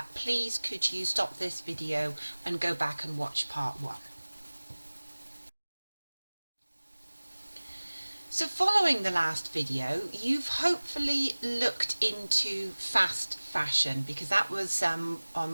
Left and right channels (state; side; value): inverted; both; correlation -1.00